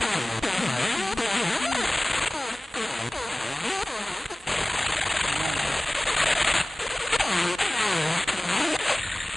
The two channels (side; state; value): both; normal; correlation 0.98